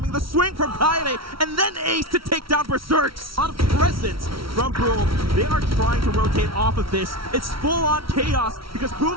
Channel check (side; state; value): left; late; 0.75 ms